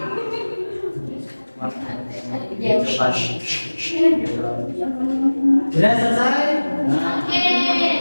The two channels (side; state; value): both; inverted; correlation -1.00